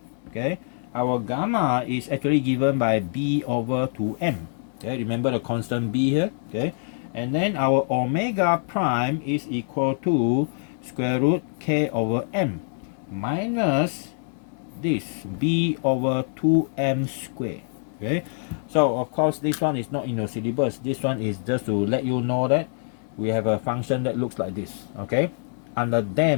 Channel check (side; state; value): right; silent; digital silence